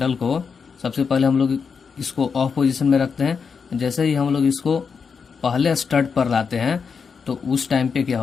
को, सबसे पहले हम लोग इसको ऑफ पोजीशन में रखते हैं। जैसे ही हम लोग इसको पहले स्टड पर लाते हैं तो उस टाइम पे क्या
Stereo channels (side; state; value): right; quieter; 5.8 dB